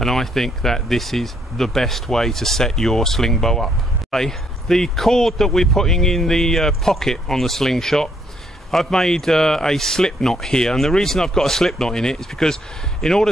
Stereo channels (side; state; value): both; normal; correlation 0.71